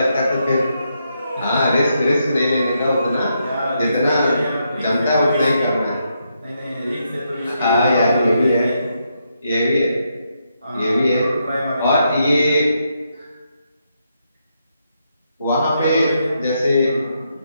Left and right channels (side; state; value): both; inverted; correlation -0.80